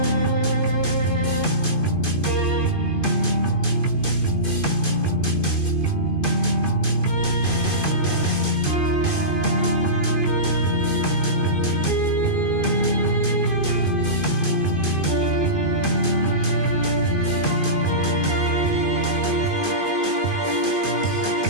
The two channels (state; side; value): late; right; 2.5 ms